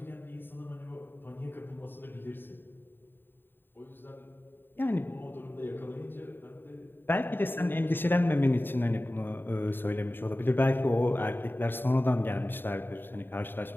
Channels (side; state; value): right; late; 0.096 ms